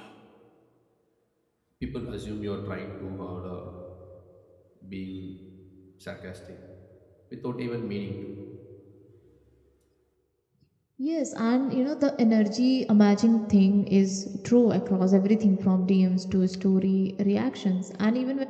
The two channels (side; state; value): both; identical; correlation 1.00